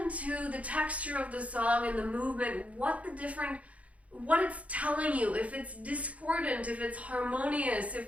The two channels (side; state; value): left; late; 0.066 ms